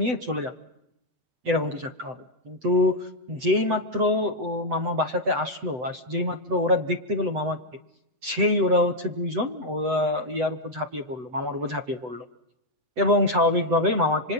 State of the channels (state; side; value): late; left; 7.9 ms